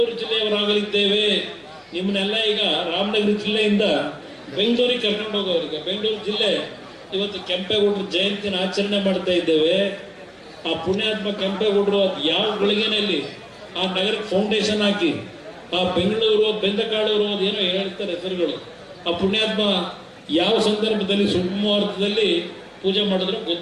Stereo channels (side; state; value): both; identical; correlation 1.00